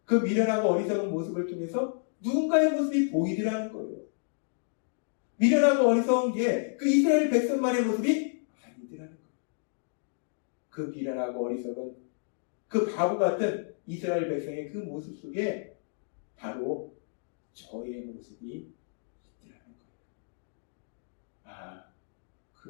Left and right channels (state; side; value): silent; right; digital silence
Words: 그 미련하고 어리석은 모습을 통해서 누군가의 모습이 보이더라는 거예요. 미련하고 어리석은 게 그 이스라엘 백성만의 모습이 아니더라는 거예요. 그 미련하고 어리석은 그 바보 같은 이스라엘 백성의 그 모습 속에 바로 저의 모습이 있더라는 거예요. 아,